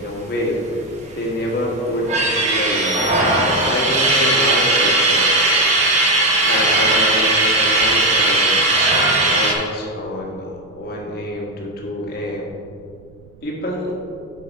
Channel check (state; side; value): noise; right; rumble, 26 dB below the sound